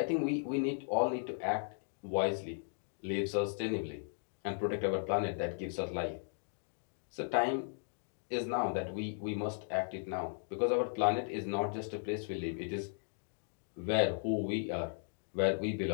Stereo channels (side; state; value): right; silent; digital silence